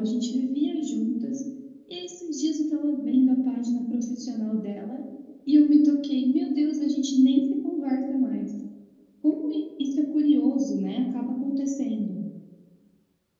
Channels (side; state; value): both; identical; correlation 1.00